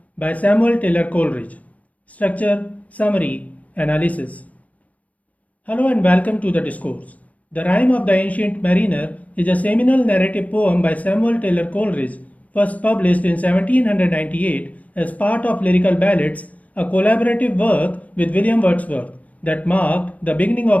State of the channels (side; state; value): right; late; 0.070 ms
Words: by Samuel Taylor Coleridge. Structure, Summary, Analysis. Hello and welcome to the discourse. The Rime of the Ancient Mariner is a seminal narrative poem by Samuel Taylor Coleridge, first published in 1798 as part of Lyrical Ballads, a collaborative work with William Wordsworth that marked the beginning